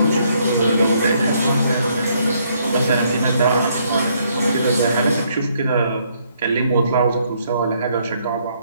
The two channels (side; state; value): both; inverted; correlation -0.70